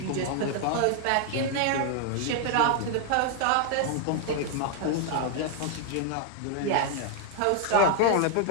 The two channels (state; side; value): different; both; correlation 0.00